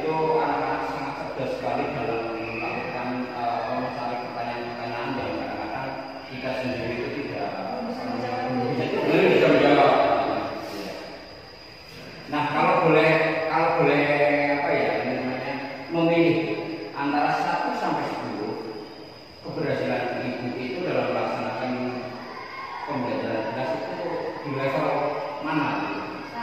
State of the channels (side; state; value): both; identical; correlation 1.00